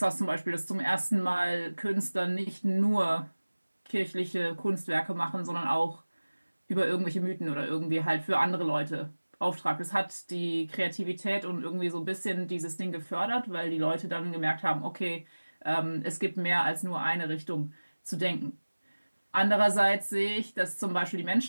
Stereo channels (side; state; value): both; inverted; correlation -1.00